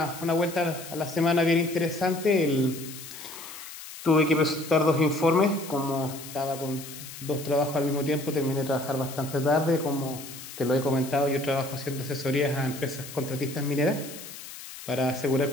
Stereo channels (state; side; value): noise; left; hiss, 13 dB below the sound